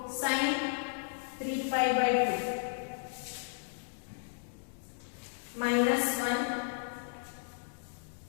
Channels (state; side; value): silent; right; digital silence